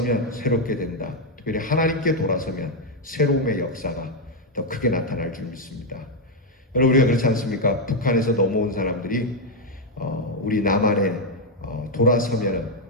새롭게 된다. 특별히 하나님께 돌아서면 새로움의 역사가 더 크게 나타날 줄 믿습니다. 여러분, 우리가 그렇지 않습니까? 북한에서 넘어온 사람들이 우리 남한에 돌아서면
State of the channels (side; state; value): both; normal; correlation 0.03